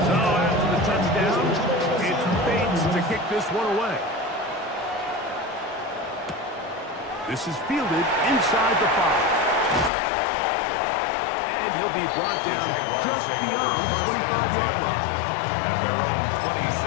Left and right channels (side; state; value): right; drops out; at 9.9 s